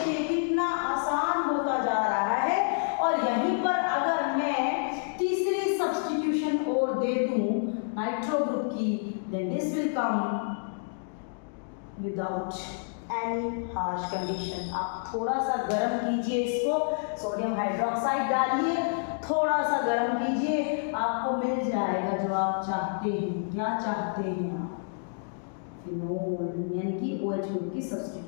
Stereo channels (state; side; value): silent; right; digital silence